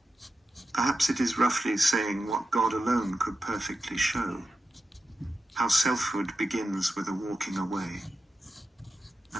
Perhaps it is roughly saying what God alone could perfectly show, how selfhood begins with a walking away,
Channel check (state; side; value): normal; both; correlation 0.89